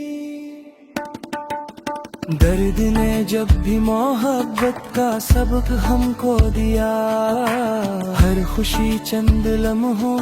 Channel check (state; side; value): identical; both; correlation 1.00